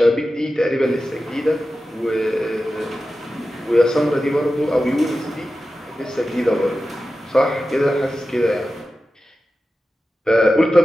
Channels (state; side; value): normal; both; correlation 0.93